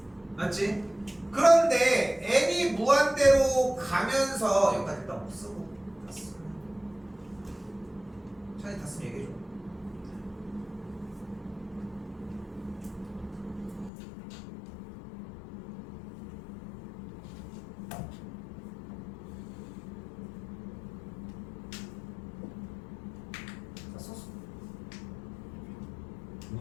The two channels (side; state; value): right; drops out; at 13.9 s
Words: 맞지? 그런데 n이 무한대로 가면서 여기까지 일단 못 쓰고 다 쓰고 찬이 다 쓰면 얘기해줘. 다 썼어.